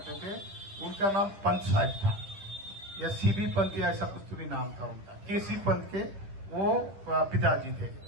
थे, उनका नाम पंत साहब था या सीबी पंत या ऐसा कुछ तो भी नाम था उनका, केसी पंत के वो पिताजी थे।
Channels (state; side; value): late; left; 10 ms